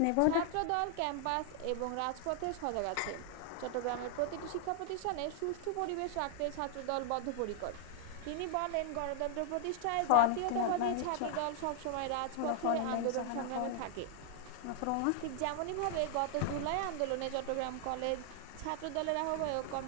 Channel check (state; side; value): different; both; correlation 0.00